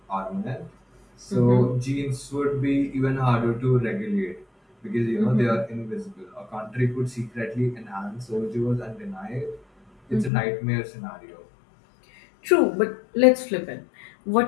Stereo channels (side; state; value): right; drops out; at 10.3 s